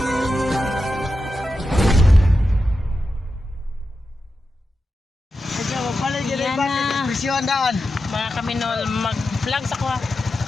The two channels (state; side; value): normal; both; correlation 0.90